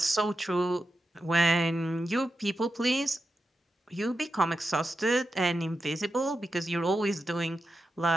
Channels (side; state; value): both; normal; correlation 0.89